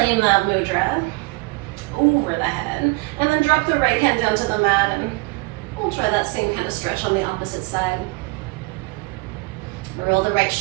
that mudra over the head, and then drop the right hand down to the mat, and we'll try that same kind of stretch on the opposite side. Roll the right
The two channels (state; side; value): quieter; left; 26.2 dB